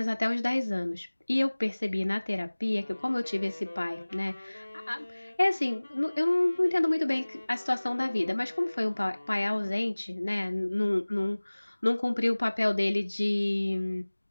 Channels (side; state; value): both; inverted; correlation -1.00